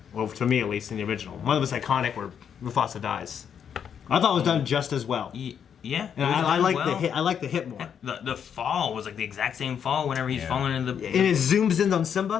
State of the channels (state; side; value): quieter; right; 8.0 dB